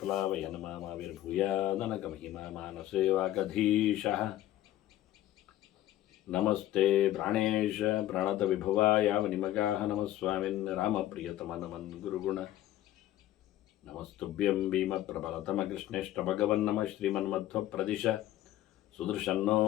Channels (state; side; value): quieter; right; 13.8 dB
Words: नमाविर्भूयादनकमहिमा मानसे वागधीशः नमस्ते प्राणेश प्रणतविभुवाय वनिमगाः नमः स्वामिन् रामप्रियतमनमन् गुरुगुण नमस्तुभ्यं भीमप्रबलतमकृष्णेष्टभगवन्नमः श्रीमन्मध्वप्रदिश सुदर्शन्नो